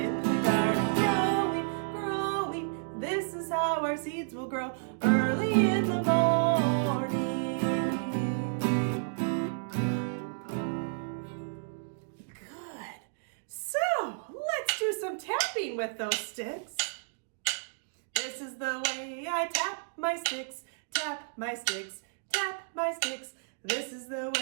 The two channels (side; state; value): left; silent; digital silence